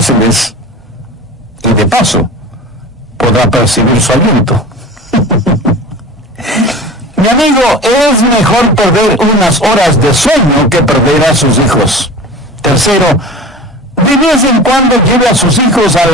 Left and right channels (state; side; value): normal; both; correlation 0.36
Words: y de paso podrá percibir su aliento. Mi amigo, es mejor perder unas horas de sueño que perder a sus hijos. Tercero, de vez en cuando lleve a sus hijos a